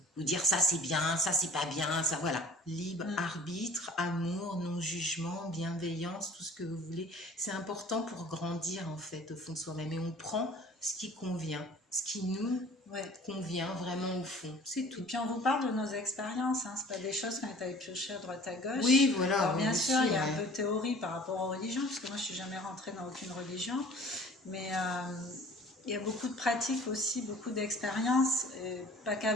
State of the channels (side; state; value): both; normal; correlation 0.48